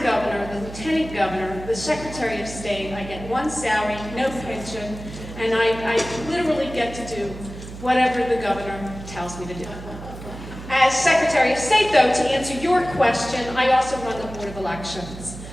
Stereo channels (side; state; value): right; noise; hum, 12 dB below the sound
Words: Governor, the Lieutenant Governor, the Secretary of State. I get one salary, no pension, and I literally get to do whatever the Governor tells me to do. As Secretary of State, though, to answer your question, I also run the Board of Elections.